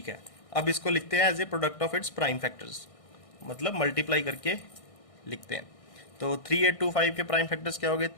है। अब इसको लिखते हैं as a product of its prime factors, मतलब मल्टीप्लाई करके लिखते हैं। तो 3 8 2 5 के प्राइम फैक्टर्स क्या हो गए?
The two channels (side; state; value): right; late; 1.6 ms